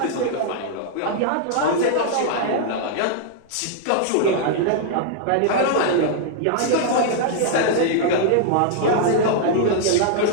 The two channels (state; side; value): different; both; correlation -0.01